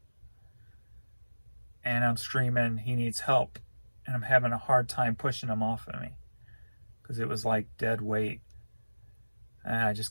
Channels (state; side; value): inverted; both; correlation -1.00